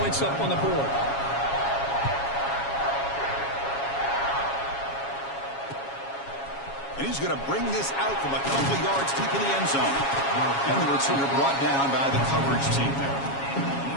up on the board. And he's going to bring this out from a couple yards deep in the end zone. And the returner brought down by the coverage team there.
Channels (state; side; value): late; right; 7.3 ms